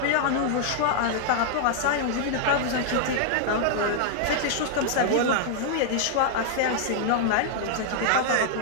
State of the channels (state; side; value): different; both; correlation -0.01